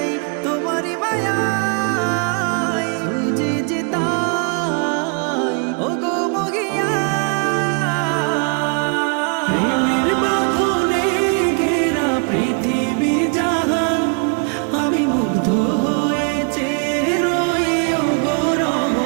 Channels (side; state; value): left; quieter; 36.1 dB